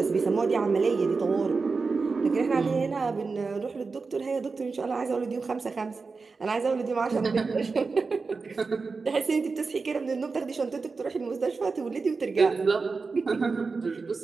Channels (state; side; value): quieter; left; 4.4 dB